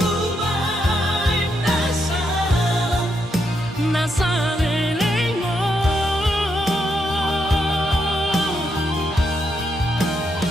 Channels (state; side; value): normal; both; correlation 0.80